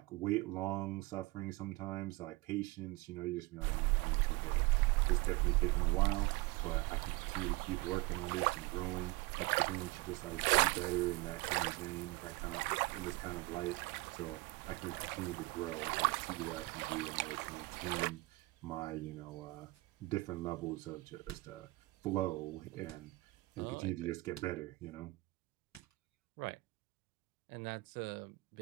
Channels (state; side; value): quieter; left; 22.5 dB